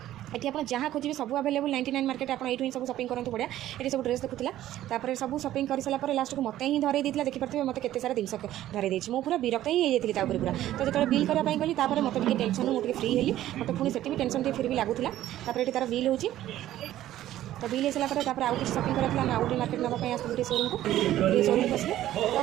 ये आप जहाँ खोजे सब अवेलेबल 99 मार्केट आप ये सब शॉपिंग करते बढ़िया ये सब ड्रेस देखुला सब शॉपिंग कर सारापर लास्ट को मत ही धरई देता देखिए मत के सारा जिन धरई देती मुझे पूरा विरक्त ही होती पूरा तो जो बिल करने गली मत टेंशन मुझे फ्री हेली मत पुणी से टेंशन फिर भी लगुला ये तार बिल हो तो बिल हो सारापर आउ किसी शॉपिंग करा आम आउटे मार्केट नापी आसलु शोरूम को शोरूम को आसलु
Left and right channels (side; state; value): left; quieter; 13.4 dB